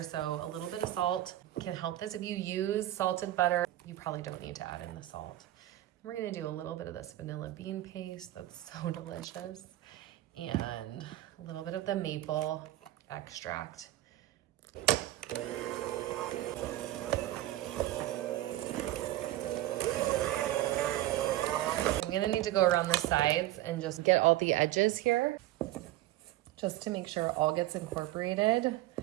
so a little bit of salt can help this. If you use salted butter, you probably don't need to add in the salt. We're gonna do a little bit of this vanilla bean paste that's so delicious, and a little bit of the maple extract. I'm gonna need to go around the sides and just get all the edges here, just to make sure it all gets incorporated.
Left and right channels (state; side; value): quieter; left; 15.3 dB